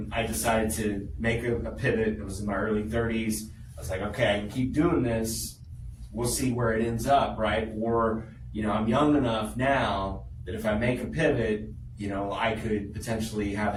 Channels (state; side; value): identical; both; correlation 1.00